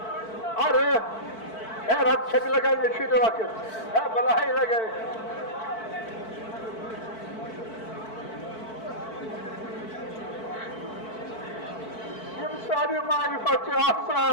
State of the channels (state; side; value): late; right; 4.5 ms